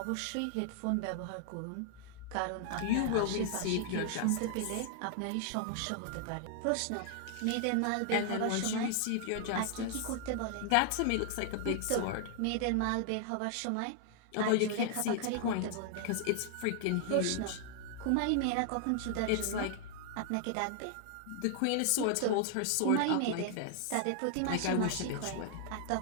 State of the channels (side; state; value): both; different; correlation -0.01